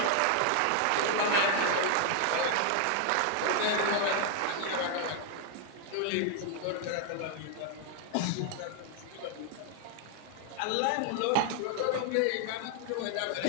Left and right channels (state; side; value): different; both; correlation 0.00